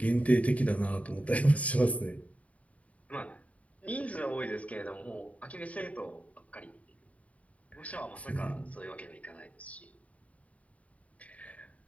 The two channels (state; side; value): late; right; 0.067 ms